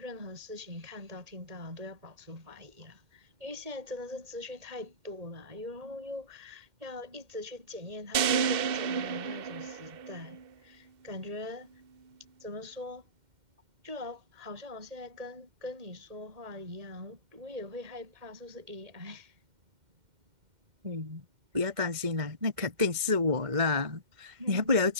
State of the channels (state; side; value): late; left; 2.1 ms